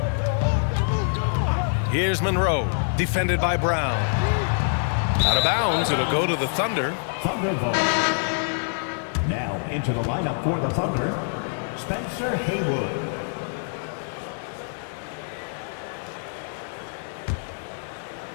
Here's Monroe, defended by Brown. Out of bounds, it'll go to the Thunder. Thunder vote. Now into the lineup for the Thunder, Spencer Haywood.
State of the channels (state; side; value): silent; right; digital silence